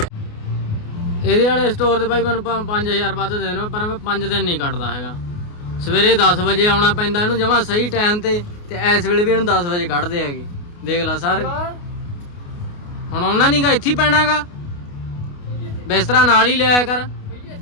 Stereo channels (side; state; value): right; late; 28 ms